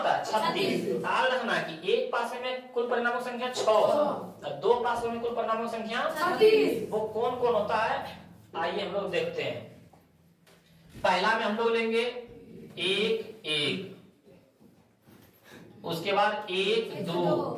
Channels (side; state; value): both; identical; correlation 1.00